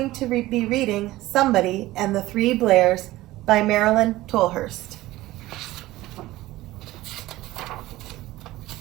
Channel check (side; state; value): left; quieter; 17.2 dB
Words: to be reading Somebody and the Three Blairs by Marilyn Tolhurst.